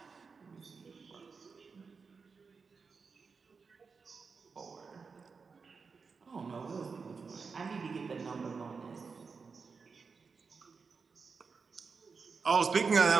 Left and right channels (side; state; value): left; quieter; 5.0 dB